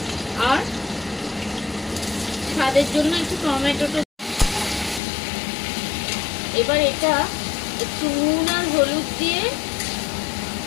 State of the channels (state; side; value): drops out; right; at 5.0 s